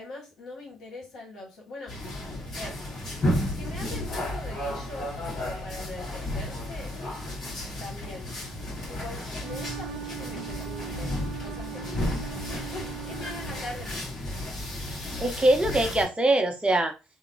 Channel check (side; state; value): both; normal; correlation 0.75